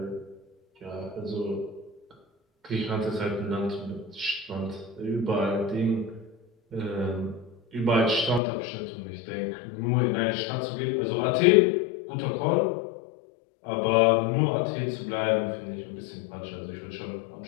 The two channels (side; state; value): right; drops out; at 8.4 s